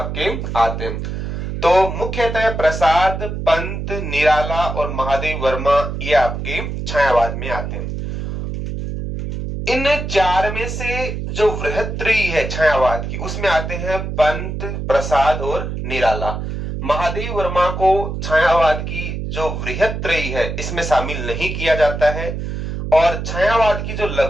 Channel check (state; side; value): noise; right; hum, 5 dB below the sound